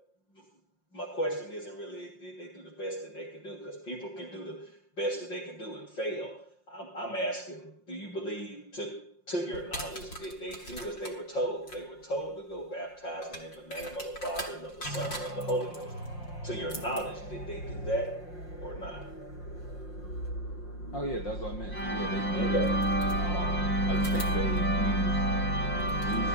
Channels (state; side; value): late; right; 5.6 ms